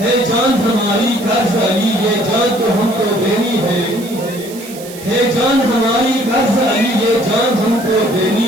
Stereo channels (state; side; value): noise; right; hiss, 16 dB below the sound